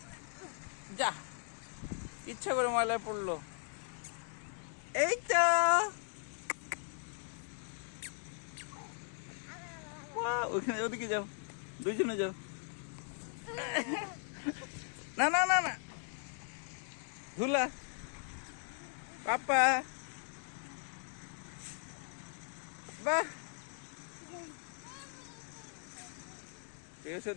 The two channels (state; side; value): silent; right; 52 dB below the other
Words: যা, ইচ্ছা করে ময়লায় পড়লো। এই তো ওখানে, ওদিকে যাও, দুইজনে যাও। না না না না, ধুলা পাপা। বাহ,